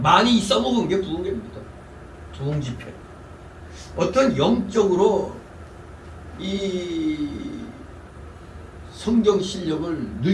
많이 써먹은 게 부흥회입니다. 부흥 집회. 어떤 영적으로 이 성경 실력을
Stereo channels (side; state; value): both; identical; correlation 1.00